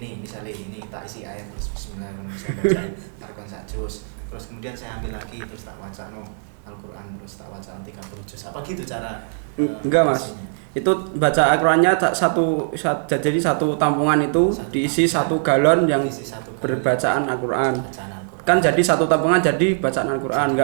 misalnya ini tak isi ayat terus bismillahirrahmanirrahim saya bacain tarkon sak juz. Terus kemudian saya ambil lagi terus tak wacano Al-Quran terus tak wacano 30 juz. Apa gitu cara Enggak Mas. isinya? Itu baca Al-Qur'annya jadi satu tampungan itu Satu diisi tampungan. 1 galon yang Diisi 1 galon. berbacaan Al-Qur'an. Bacaan Al-Quran. Kan jadi satu tampungan jadi bacaan Al-Qur'an, Jadi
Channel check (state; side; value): silent; left; 61 dB below the other